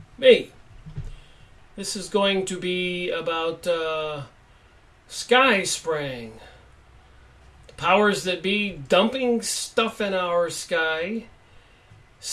Me. This is going to be about sky spraying. The powers that be dumping stuff in our sky,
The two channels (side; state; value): both; identical; correlation 1.00